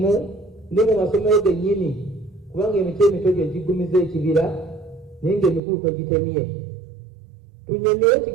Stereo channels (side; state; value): left; drops out; at 5.6 s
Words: ne mu masomero gennyini, kubanga emiti emito gye gigumiza ekibira naye ng'emikulu togitemye. Tunnyonnyola